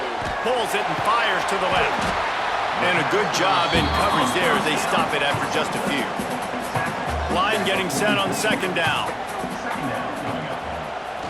Pulls it and fires to the left. And a good job in coverage there as they stop it after just a few. Line getting set on second down.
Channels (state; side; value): identical; both; correlation 1.00